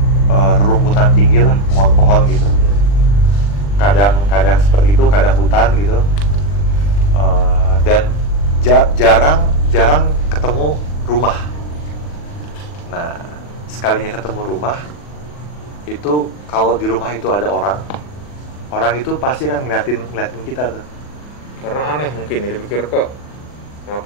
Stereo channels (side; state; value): right; late; 40 ms